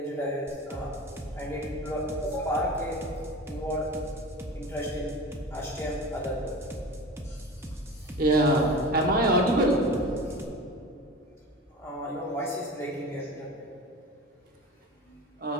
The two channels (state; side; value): normal; both; correlation 0.34